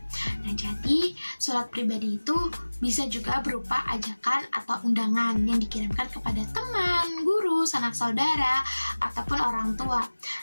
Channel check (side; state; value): both; inverted; correlation -1.00